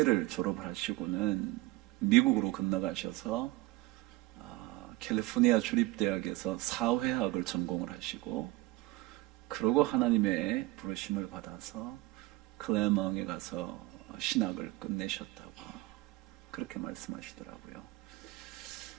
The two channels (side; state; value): left; quieter; 19.2 dB